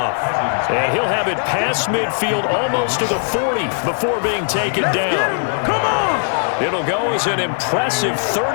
And he'll have it past midfield almost to the 40 before being taken down. Come on! It'll go as an impressive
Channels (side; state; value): right; silent; 67 dB below the other